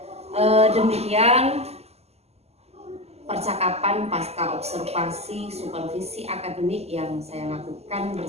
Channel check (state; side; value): late; left; 0.30 ms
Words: demikian percakapan pasca observasi supervisi akademik yang saya lakukan